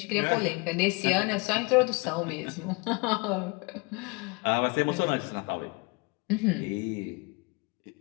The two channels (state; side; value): quieter; right; 28.8 dB